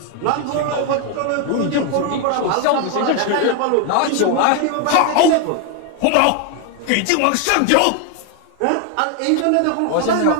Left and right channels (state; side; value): different; both; correlation 0.01